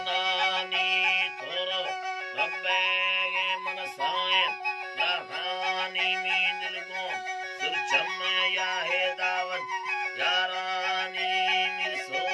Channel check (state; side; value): identical; both; correlation 1.00